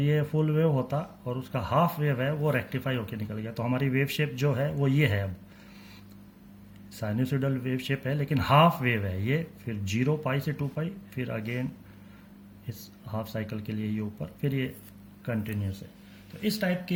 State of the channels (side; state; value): both; identical; correlation 1.00